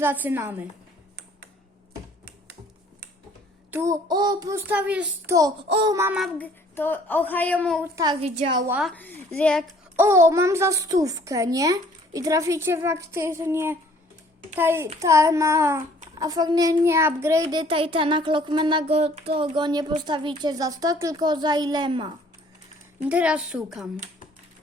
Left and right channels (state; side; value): normal; both; correlation 0.57